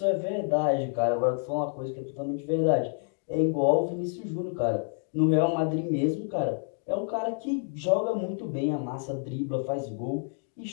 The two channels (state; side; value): silent; right; 59 dB below the other